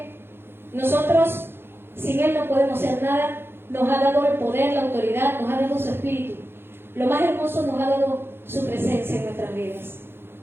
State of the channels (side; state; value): left; late; 0.11 ms